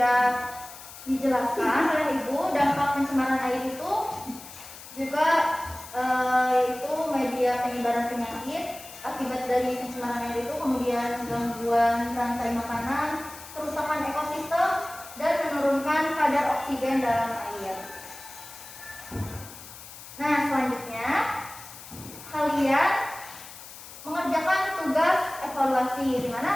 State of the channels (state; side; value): noise; left; hiss, 15 dB below the sound